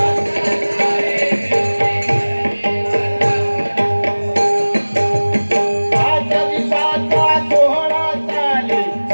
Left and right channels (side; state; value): both; inverted; correlation -1.00